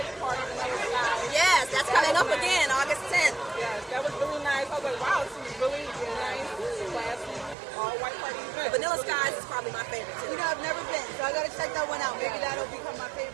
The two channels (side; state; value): left; drops out; at 7.6 s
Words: Party when I was live. Yes, that's coming up again, August 10th. Yes, that was really nice. I was like, wow, this is really nice, classy, all white party event. Vanilla Skies is probably my favorite, too. You know, I've never been, so I gotta check that one out. Maybe that'll become my